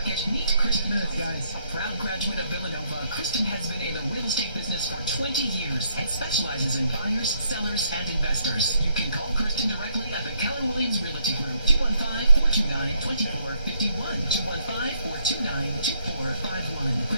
meet Kristen. Guys. A proud graduate of Villanova, Kristen has been in the real estate business for 20 years and specializes in buyers, sellers, and investors. You can call Kristen directly at the Keller Williams Realty Group, 215-429-2451, 215-429-2451.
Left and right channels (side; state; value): both; inverted; correlation -0.72